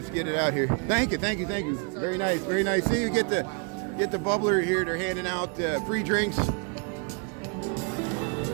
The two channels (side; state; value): left; quieter; 36.0 dB